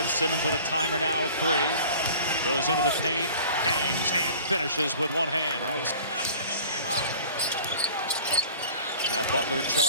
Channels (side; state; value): both; inverted; correlation -0.45